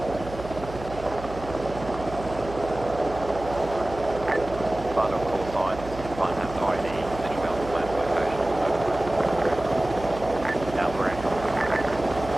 Final call signs. One has ID, visually on the planned location. Alpha Echo.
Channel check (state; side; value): noise; right; hum, 12 dB below the sound